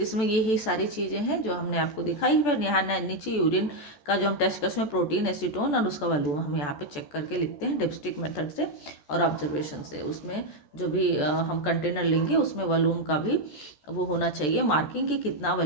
इसमें यही सारी चीज़ें हैं जो हमने आपको दिखाई। फिर यहाँ नीचे यूरिन का जो हम टेस्ट कर उसमें प्रोटीन, एसीटोन और उसका वॉल्यूम हम यहाँ पे चेक करके लिखते हैं डिप्स्टिक मेथड से और ऑब्जर्वेशन से। उसमें जो भी हम कंटेनर लेंगे उसमें वॉल्यूम का भी वो होना चाहिए मार्किंग कि कितना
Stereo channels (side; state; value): right; late; 14 ms